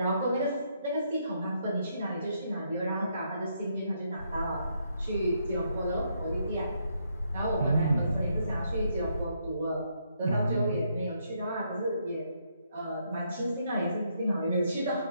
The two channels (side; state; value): both; inverted; correlation -0.75